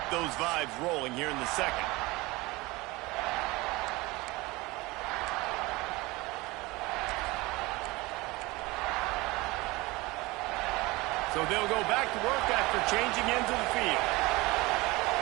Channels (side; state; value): left; quieter; 22.1 dB